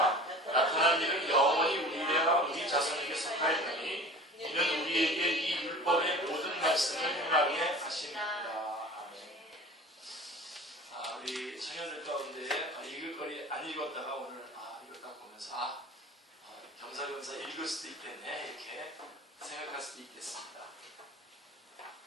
나타난 일은 영원히 우리와 우리 자손에게 속하였나니 이는 우리에게 이 율법의 모든 말씀을 행하게 하십니다. 우리 청년들 가운데 읽을 거리 안 읽었다가 오늘 이걸 보면서 겸사겸사 읽을 수도 있겠네 이렇게 생각할 수도 있겠습니다.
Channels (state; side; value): normal; both; correlation 0.40